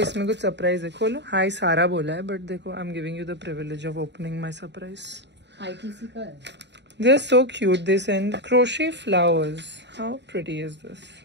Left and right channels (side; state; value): left; late; 0.51 ms